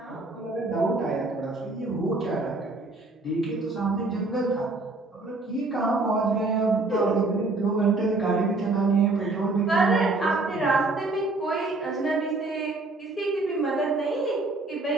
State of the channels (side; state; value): left; quieter; 3.2 dB